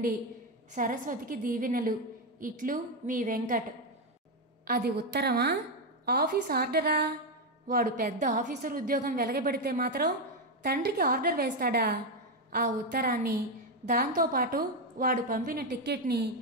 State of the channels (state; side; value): normal; both; correlation 0.06